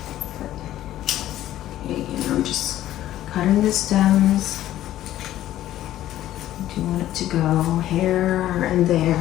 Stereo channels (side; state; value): right; quieter; 13.4 dB